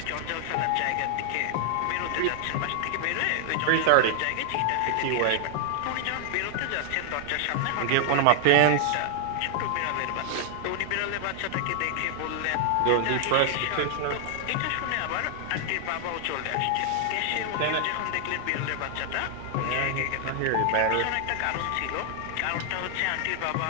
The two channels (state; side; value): different; both; correlation 0.00